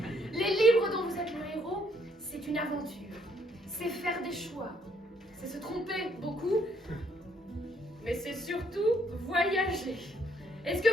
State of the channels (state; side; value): normal; both; correlation 0.69